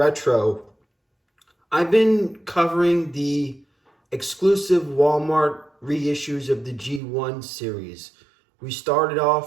I've been covering the exclusive Walmart reissues of the G1 series. We started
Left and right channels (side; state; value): left; drops out; at 7.0 s